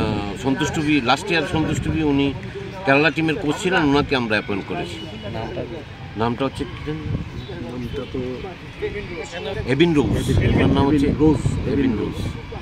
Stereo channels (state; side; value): identical; both; correlation 1.00